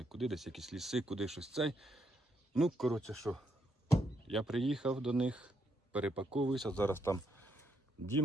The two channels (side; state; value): both; normal; correlation 0.77